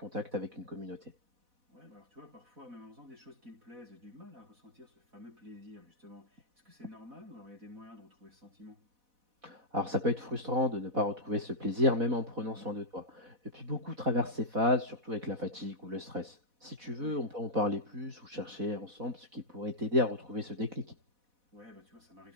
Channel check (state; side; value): late; left; 4.1 ms